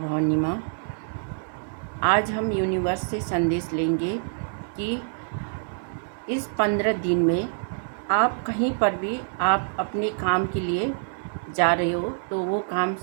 माँ। आज हम यूनिवर्स से संदेश लेंगे कि इस 15 दिन में आप कहीं पर भी आप अपने काम के लिए जा रहे हो तो वो काम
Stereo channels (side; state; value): left; silent; 61 dB below the other